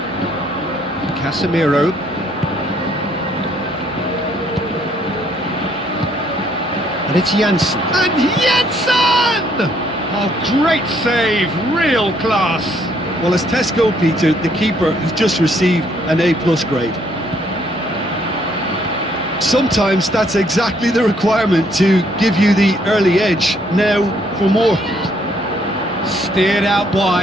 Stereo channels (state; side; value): normal; both; correlation 0.67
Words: Casemiro. And it's Janssen. And Janssen! Oh, great save, real class. Well, as Tesco, Peter, the keeper has just received an A+ grade. Sometimes that's exactly the requirement to give you the early edge. Now for more. Steered out